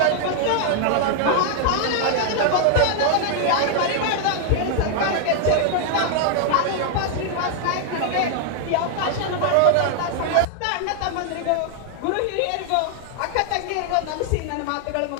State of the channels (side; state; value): both; different; correlation 0.00